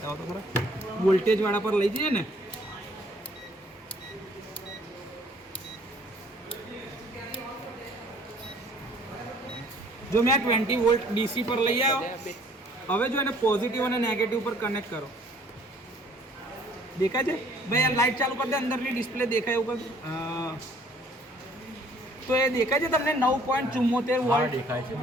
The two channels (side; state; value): both; normal; correlation 0.58